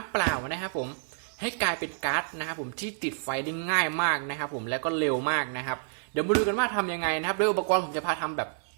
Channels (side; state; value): left; silent; digital silence